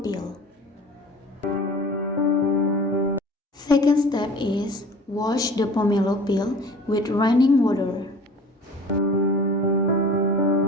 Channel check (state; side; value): normal; both; correlation 0.44